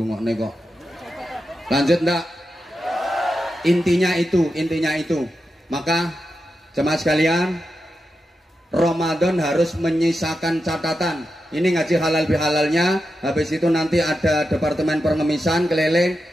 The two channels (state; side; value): normal; both; correlation 0.89